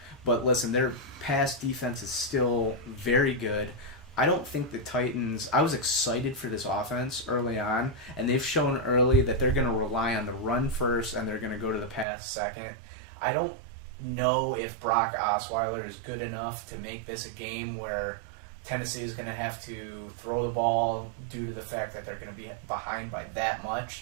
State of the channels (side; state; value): left; drops out; at 12.1 s